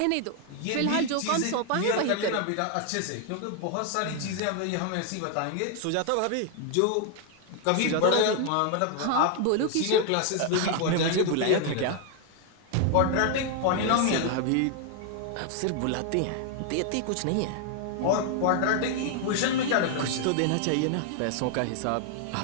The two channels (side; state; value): both; different; correlation 0.00